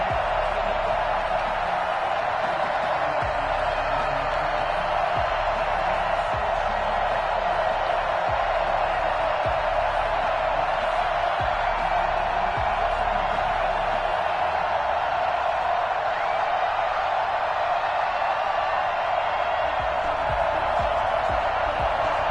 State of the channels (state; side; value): identical; both; correlation 1.00